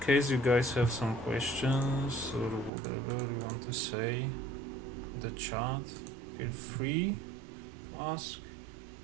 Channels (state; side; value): drops out; left; at 2.7 s